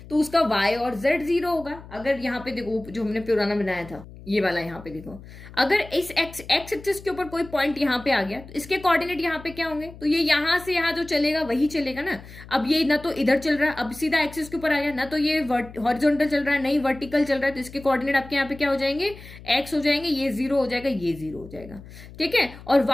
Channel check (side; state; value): left; noise; hum, 17 dB below the sound